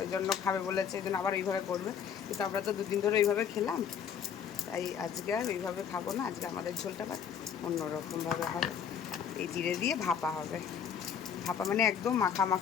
ওই জন্য খাবে বলেছে, এই জন্য আবার ওইভাবে করবে। কিন্তু আমরা তো 2 দিন ধরে ওইভাবে খেলাম, তাই আজকে আর ওইভাবে খাবো না। আজকে আমাদের ঝোলটা অন্যরকমভাবে হবে, এই জিরে দিয়ে ভাপা হবে। ভাপা মানে একদম মাখা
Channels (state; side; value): quieter; right; 7.8 dB